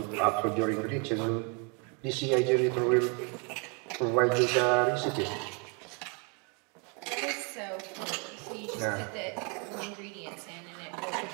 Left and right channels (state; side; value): quieter; left; 34.8 dB